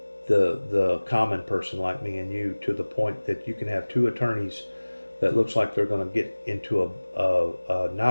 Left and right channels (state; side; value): inverted; both; correlation -1.00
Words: the common person like me and you, to the point that you can have two attorneys that looks like they're going to get into a